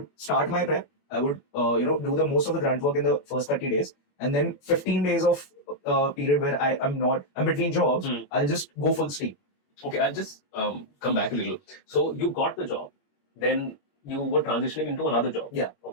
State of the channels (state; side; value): late; right; 21 ms